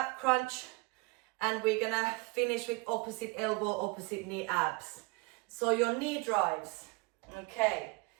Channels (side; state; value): left; quieter; 27.0 dB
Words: crunch. And we're going to finish with opposite elbow, opposite knee abs. So your knee drives. Okay.